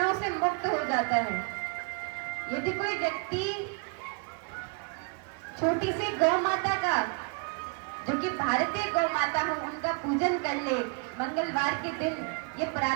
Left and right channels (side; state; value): left; quieter; 36.4 dB